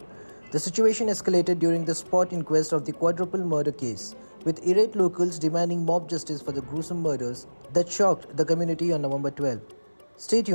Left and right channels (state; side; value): inverted; both; correlation -1.00